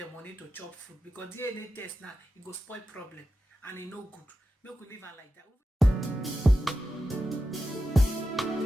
money to chop food because DNA test now it go spoil problem and it no good. Make we leave her like that.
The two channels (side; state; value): both; normal; correlation 0.91